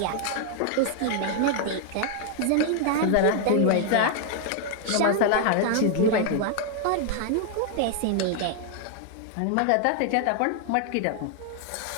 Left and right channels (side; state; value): both; different; correlation 0.00